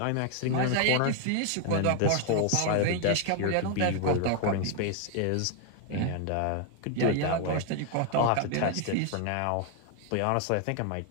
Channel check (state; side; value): different; both; correlation 0.00